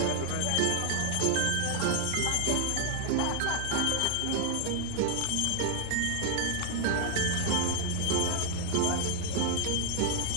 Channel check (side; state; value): both; different; correlation 0.00